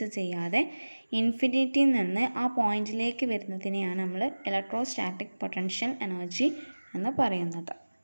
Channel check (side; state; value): both; inverted; correlation -1.00